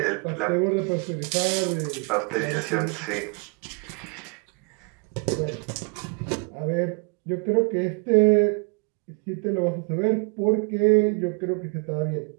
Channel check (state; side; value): quieter; left; 34.3 dB